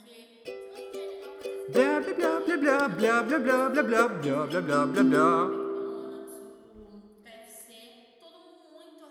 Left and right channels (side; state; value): both; identical; correlation 1.00